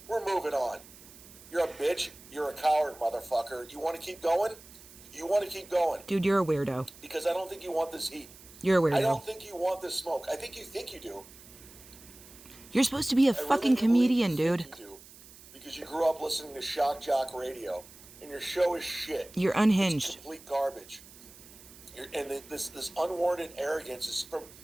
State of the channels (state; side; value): noise; right; hiss, 20 dB below the sound